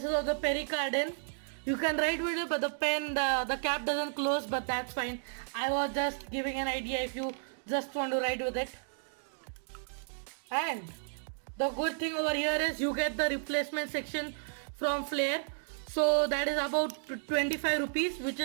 is of the pericardium. You can write with it, but the pen, the cap doesn't close, but that's fine. I was just giving an idea if you just want to write with it. And the good thing over here is you get the replacement section from Flair. So that is about 25 rupees, which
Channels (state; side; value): silent; left; digital silence